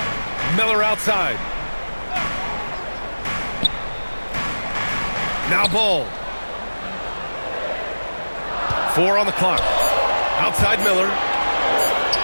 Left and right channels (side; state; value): both; inverted; correlation -1.00